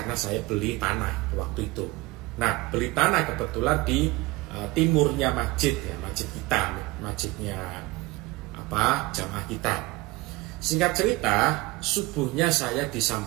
saya beli tanah waktu itu. Nah, beli tanah kebetulan di timurnya masjid ya, masjid kita, masjidnya jamaah kita. Singkat cerita, subuhnya saya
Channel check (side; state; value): left; quieter; 21.5 dB